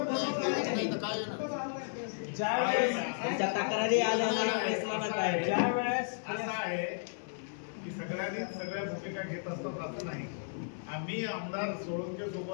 तुमच्या तक्रारी आल्या नाही, ज्यावेळेस असं आहे की सगळ्यांनी सगळ्या भूमिका घेत असतात असं नाही. आम्ही आमदार सोळंके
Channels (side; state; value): right; silent; 55 dB below the other